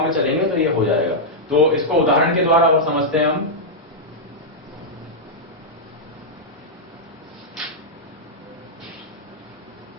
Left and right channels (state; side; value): normal; both; correlation -0.07